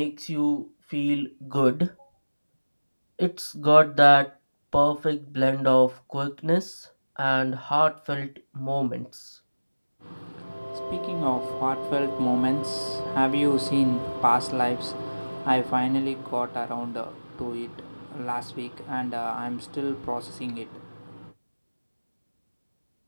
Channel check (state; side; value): inverted; both; correlation -1.00